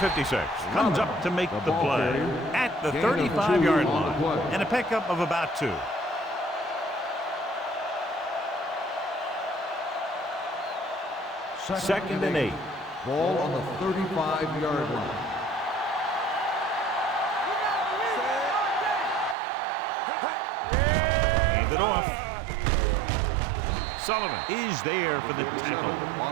comes up to make the play at the 35-yard line. And a pickup of about 2. Second and 8. Ball on the 35-yard line. Hand it off. Sullivan is there for the tackle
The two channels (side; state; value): left; drops out; at 19.4 s